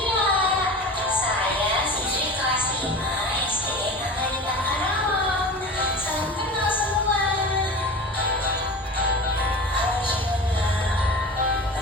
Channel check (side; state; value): both; normal; correlation 0.33